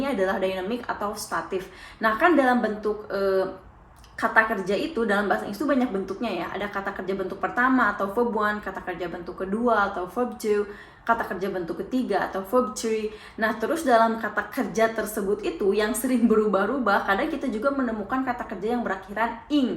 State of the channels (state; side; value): identical; both; correlation 1.00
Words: adalah dynamic atau statif. Nah, kan dalam bentuk kata kerja itu dalam bahasa Inggris itu banyak bentuknya ya. Ada kata kerja bentuk pertama atau verb one, kata kerja bentuk kedua atau verb two, kata kerja bentuk ketiga atau verb three. Nah, terus dalam kata kerja tersebut itu yang sering berubah-ubah, kadang kita juga menemukan kata kerja yang berakhiran